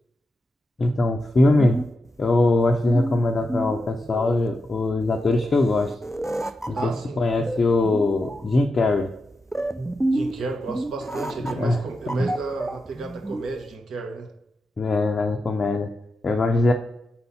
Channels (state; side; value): normal; both; correlation 0.88